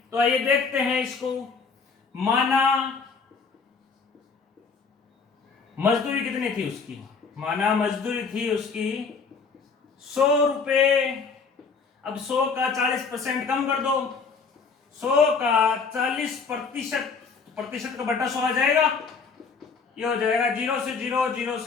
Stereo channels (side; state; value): right; quieter; 5.1 dB